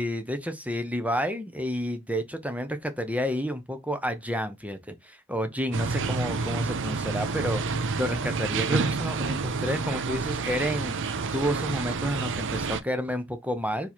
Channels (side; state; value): both; normal; correlation 0.63